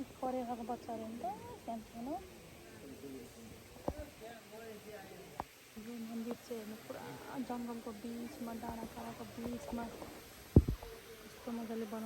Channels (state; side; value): identical; both; correlation 1.00